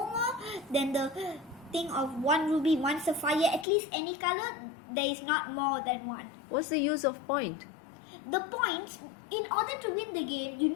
more than the thing of 1 ruby, 1 Sapphire, at least any color, there is not more than 1. What's the use of point? The points, in order to win the game, you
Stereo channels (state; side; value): drops out; right; at 3.7 s